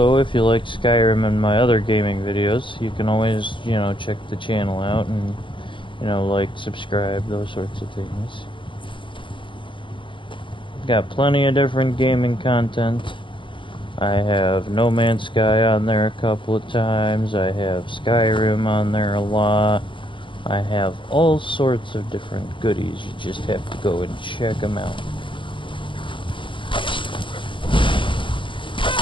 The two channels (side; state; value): right; late; 0.24 ms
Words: if you like Skyrim and my other gaming videos, you can always, check the channel out and, like, subscribe, those sorts of things. Got plenty of different gaming content. I have No Man's Sky on there a couple of times. I have Skyrim on there a lot. I have all sorts of different goodies. You just have to go and check them out.